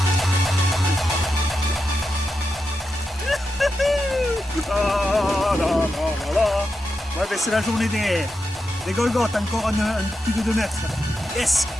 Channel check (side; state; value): both; normal; correlation 0.88